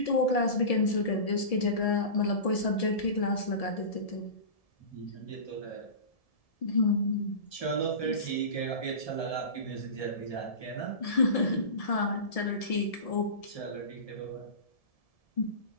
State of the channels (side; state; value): right; late; 1.7 ms